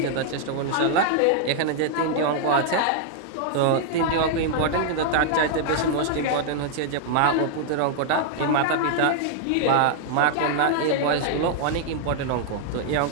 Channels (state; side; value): different; both; correlation -0.01